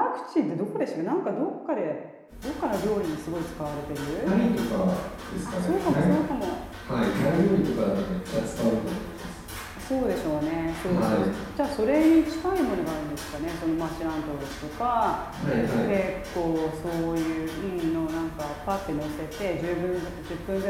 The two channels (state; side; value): identical; both; correlation 1.00